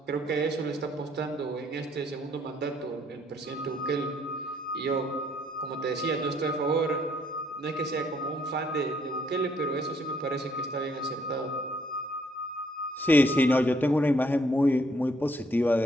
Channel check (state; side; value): normal; both; correlation 0.67